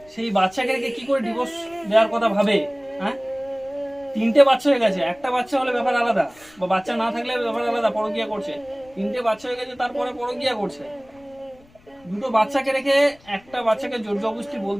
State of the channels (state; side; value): noise; left; rumble, 28 dB below the sound